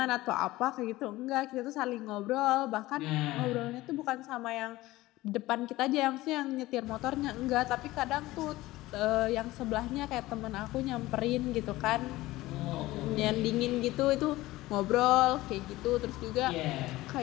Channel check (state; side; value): quieter; right; 18.0 dB